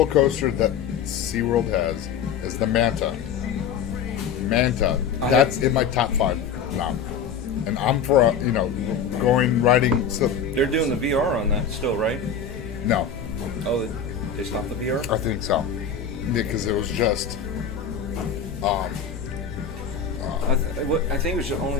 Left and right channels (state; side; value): quieter; right; 6.6 dB